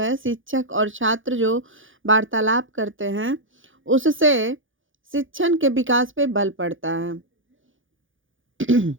शिक्षक और छात्र जो वार्तालाप करते हैं उससे शिक्षण के विकास पे बल पड़ता है।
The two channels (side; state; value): left; late; 0.57 ms